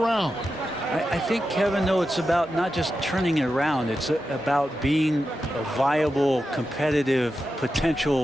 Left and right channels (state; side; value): normal; both; correlation 0.90